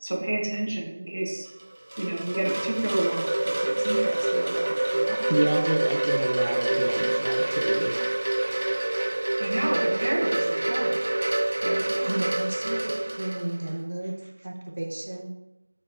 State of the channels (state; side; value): inverted; both; correlation -1.00